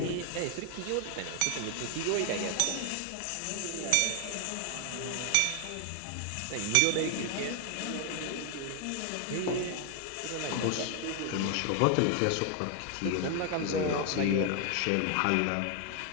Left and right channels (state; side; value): different; both; correlation 0.01